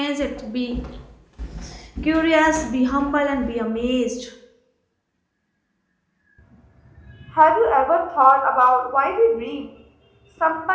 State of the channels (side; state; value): both; identical; correlation 1.00